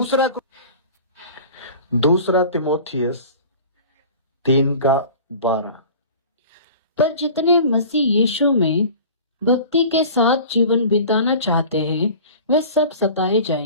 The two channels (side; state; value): both; inverted; correlation -0.41